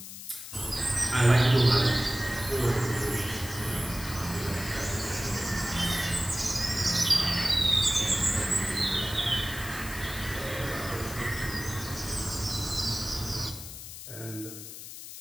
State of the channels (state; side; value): noise; left; hiss, 11 dB below the sound